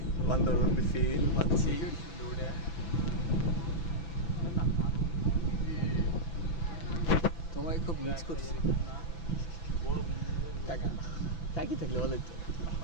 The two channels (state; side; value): late; right; 6.0 ms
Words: বান্দরবন ফিল পাচ্ছি। তোমায় খুব মিস করছি কাকা। কাকি থাকলে ভালো হতো,